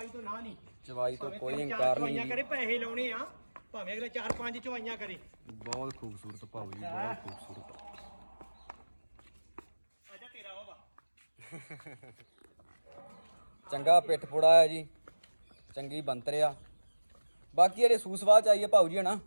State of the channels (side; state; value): both; inverted; correlation -1.00